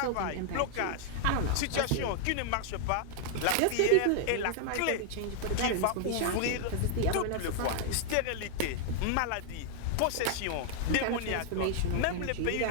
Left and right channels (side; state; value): both; different; correlation 0.00